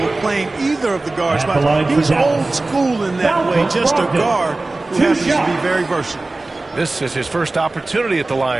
of playing either of the guard spots. He's old school in that way, just a guard who happens to be very versatile. This is his first opportunity at the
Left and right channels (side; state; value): left; quieter; 3.1 dB